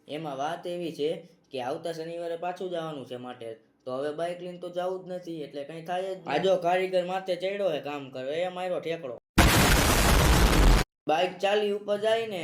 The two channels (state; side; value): identical; both; correlation 1.00